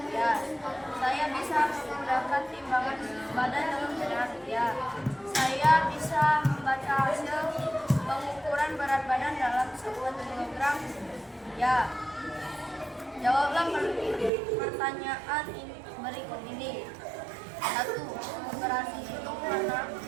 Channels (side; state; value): left; drops out; at 14.3 s